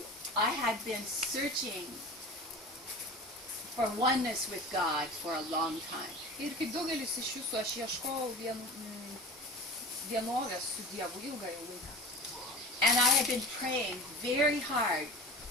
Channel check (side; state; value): both; normal; correlation 0.35